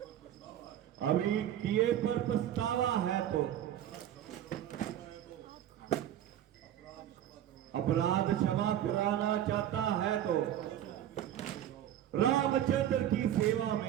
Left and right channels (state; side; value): quieter; left; 11.3 dB